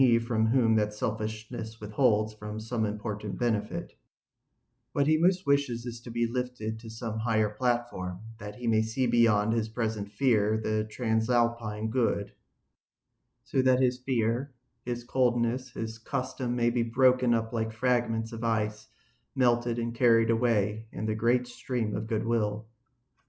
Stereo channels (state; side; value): identical; both; correlation 1.00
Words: from whom that selfishness withholds from some important benefit. What he most wishes is to be lifted to some higher platform, that he may see beyond his present fear the transalpine good, so that his fear, his coldness, his custom may be broken up like fragments of ice, melted and carried away in the great stream of goodwill.